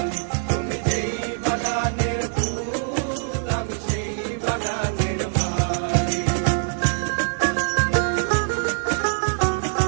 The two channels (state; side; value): silent; left; digital silence